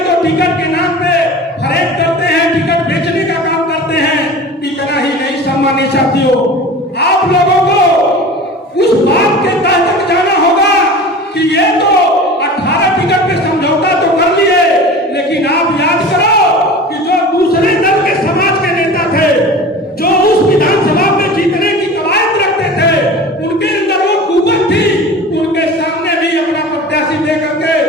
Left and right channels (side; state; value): both; normal; correlation 0.37